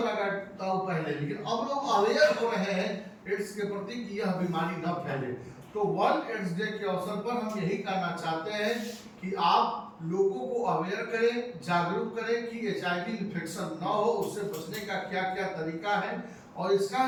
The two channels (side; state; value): both; identical; correlation 1.00